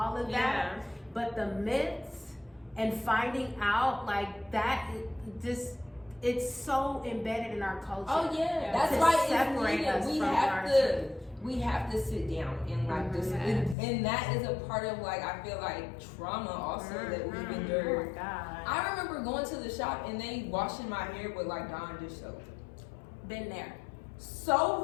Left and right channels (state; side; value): drops out; right; at 13.8 s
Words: of that. But the myths and finding out like that, it's so embedded in our culture. Oh yeah, that's why it's needed. We have to sit down and like this, and that is a part of like I feel like trauma also that we've endured. Oh my God. I remember going to the shop and they washing my hair with like Dawn dish soap. Been there.